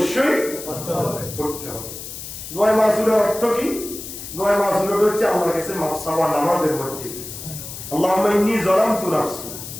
পড়তে হবে। দোয়া মাসুরার অর্থ কি? দোয়া মাসুরা হচ্ছে আল্লাহর কাছে মাফ চাওয়া নামাজের মধ্যে। আল্লাহুম্মা ইন্নী যালামতু নাফসি,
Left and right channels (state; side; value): noise; left; hiss, 10 dB below the sound